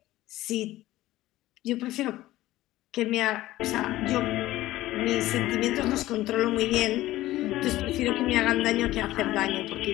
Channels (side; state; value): right; quieter; 16.1 dB